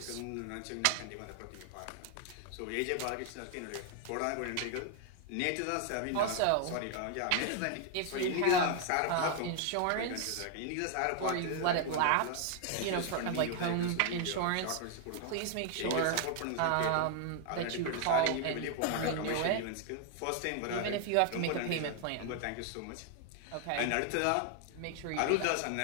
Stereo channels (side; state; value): both; different; correlation 0.00